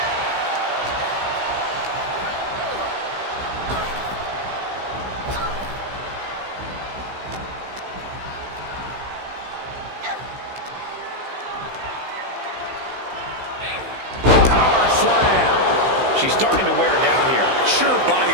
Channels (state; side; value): late; left; 16 ms